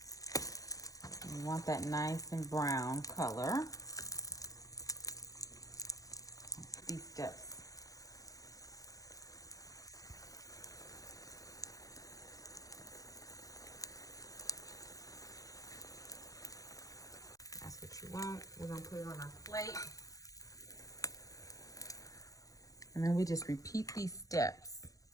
We want that nice and brown color. These steps. that's what you want. We're gonna put it on our plate. And then we just repeat these steps.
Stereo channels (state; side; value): late; right; 0.17 ms